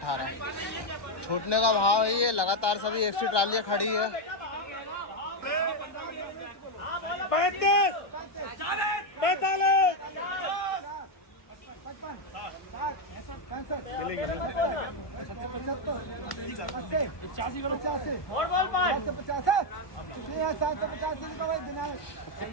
छूटने का भाव है। ये लगातार सभी एक्स्ट्रा ट्रालियाँ खड़ी है। 35 45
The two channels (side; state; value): right; late; 1.2 ms